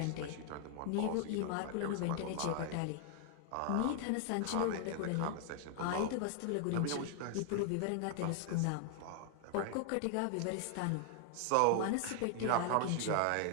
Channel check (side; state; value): both; different; correlation 0.00